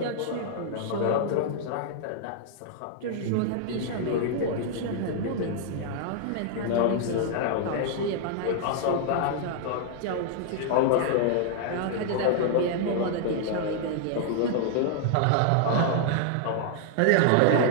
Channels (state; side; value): different; both; correlation -0.01